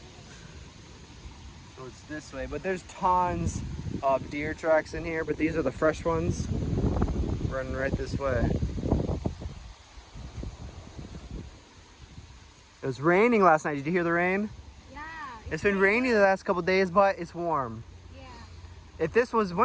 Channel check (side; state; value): both; identical; correlation 1.00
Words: So it's this way, but there's tons of deer tracks in here, but these are the fresh ones running right this way. It was raining last night. Did you hear the rain? Yeah. It's been rainy the last couple days, but it's warm. Yeah. If this was